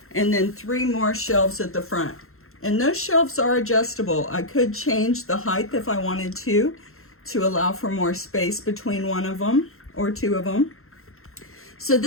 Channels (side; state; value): right; late; 0.62 ms